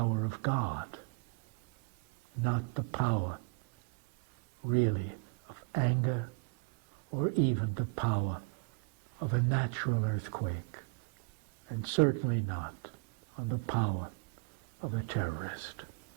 of God, not the power, really, of anger, or even the power of a natural earthquake, and certainly not on the power of a terrorist.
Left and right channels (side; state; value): left; quieter; 31.7 dB